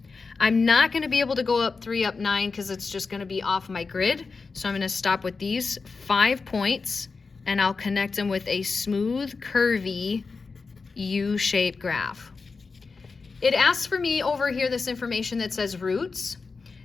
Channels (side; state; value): right; quieter; 4.5 dB